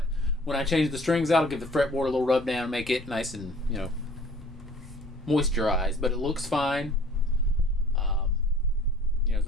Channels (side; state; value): both; normal; correlation 0.52